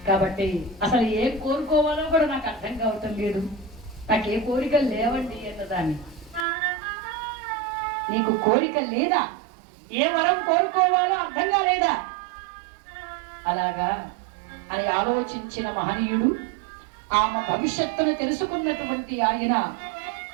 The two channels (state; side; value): drops out; left; at 6.5 s